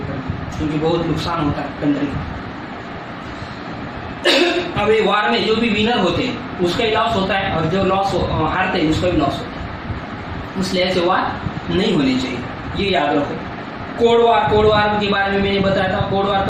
क्योंकि बहुत नुकसान होता है कंट्री का। अब ये वार में जो भी विनर होते हैं उसका ही लॉस होता है, और जो लॉस हारते हैं उसका भी लॉस होता है। इसलिए ऐसे वार नहीं होने चाहिए, ये याद रखो। कोल्ड वार के बारे में मैंने बताया था। कोल्ड वार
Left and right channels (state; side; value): identical; both; correlation 1.00